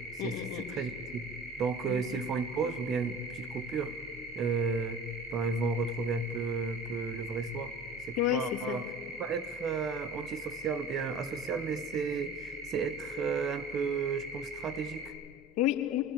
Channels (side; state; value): both; normal; correlation 0.39